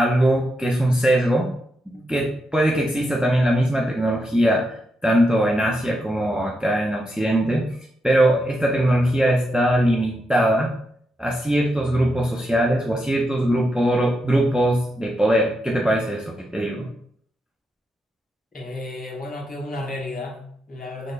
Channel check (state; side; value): normal; both; correlation 0.84